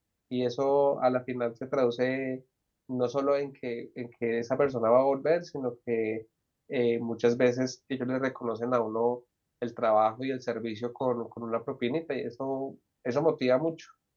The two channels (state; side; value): identical; both; correlation 1.00